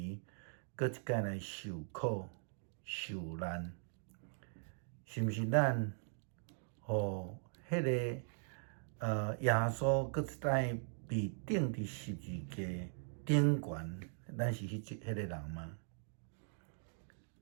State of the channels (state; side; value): silent; left; digital silence